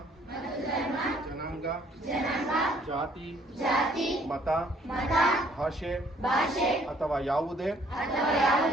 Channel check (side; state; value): both; normal; correlation 0.62